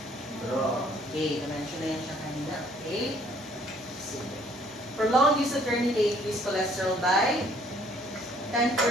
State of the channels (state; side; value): normal; both; correlation 0.61